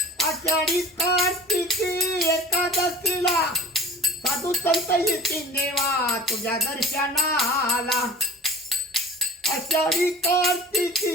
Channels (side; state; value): both; normal; correlation 0.40